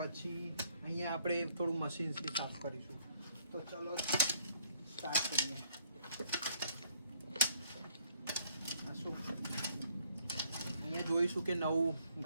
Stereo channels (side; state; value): both; inverted; correlation -0.66